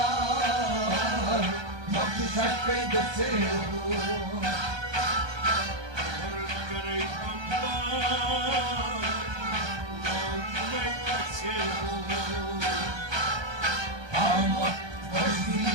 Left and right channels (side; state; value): left; late; 1.2 ms